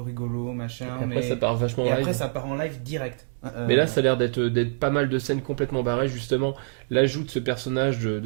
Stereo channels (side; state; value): left; silent; 61 dB below the other